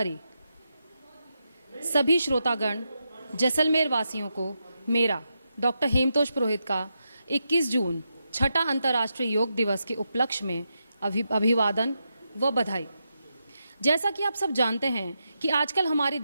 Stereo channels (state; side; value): inverted; both; correlation -0.86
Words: सभी श्रोतागण, जैसलमेर वासियों को मेरा डॉक्टर हेमतोष पुरोहित का 21 जून छठा अंतर्राष्ट्रीय योग दिवस के उपलक्ष्य में अभिवादन व बधाई। जैसा कि आप सब जानते हैं कि आजकल हमारी